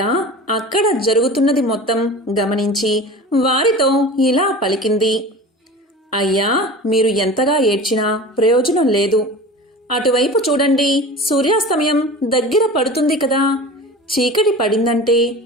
అక్కడ జరుగుతున్నది మొత్తం గమనించి వారితో ఇలా పలికింది. అయ్యా, మీరు ఎంతగా ఏడ్చినా ప్రయోజనం లేదు. అటువైపు చూడండి, సూర్యాస్తమయం దగ్గర పడుతుంది కదా. చీకటి పడిందంటే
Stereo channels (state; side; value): normal; both; correlation 0.36